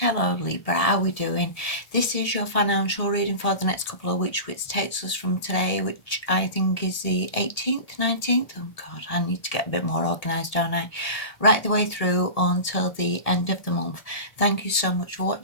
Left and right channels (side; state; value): right; late; 1.7 ms